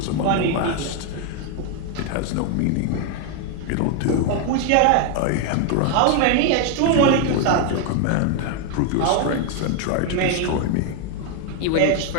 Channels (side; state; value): both; different; correlation 0.01